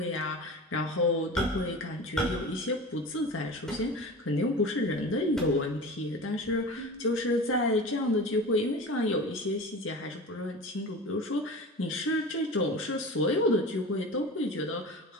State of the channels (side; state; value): both; normal; correlation 0.33